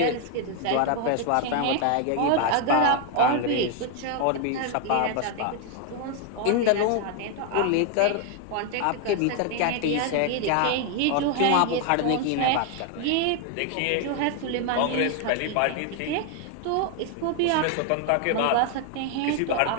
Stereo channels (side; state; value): both; different; correlation 0.01